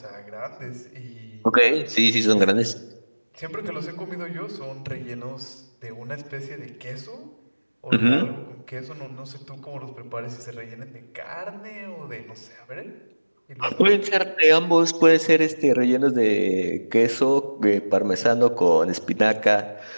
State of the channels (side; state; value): both; inverted; correlation -1.00